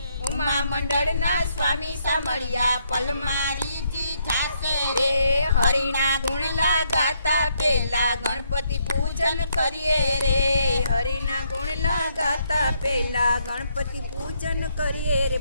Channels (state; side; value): inverted; both; correlation -0.73